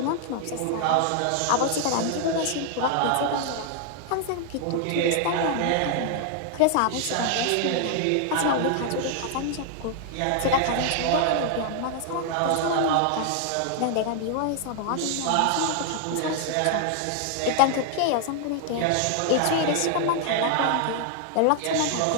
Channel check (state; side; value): different; both; correlation 0.00